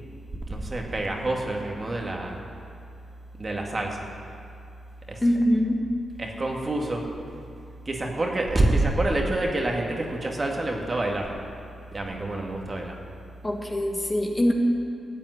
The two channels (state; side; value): normal; both; correlation 0.93